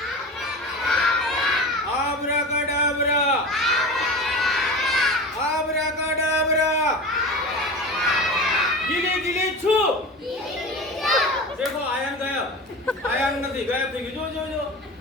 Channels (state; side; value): normal; both; correlation 0.31